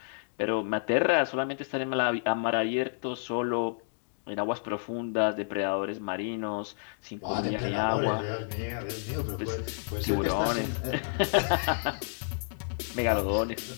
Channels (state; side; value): silent; right; digital silence